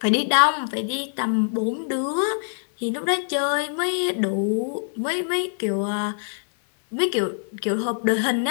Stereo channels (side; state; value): right; silent; digital silence